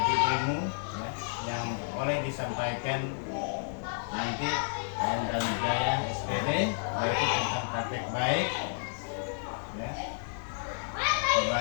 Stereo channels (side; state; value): right; silent; digital silence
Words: ilmu ya, yang boleh disampaikan nanti dan Jaya SPD, yaitu tentang praktek baik ya,